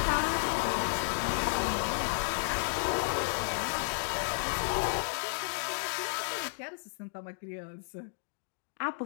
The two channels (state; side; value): silent; right; digital silence